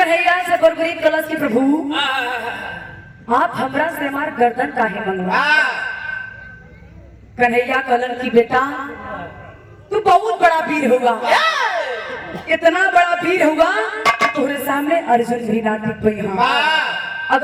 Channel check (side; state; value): both; identical; correlation 1.00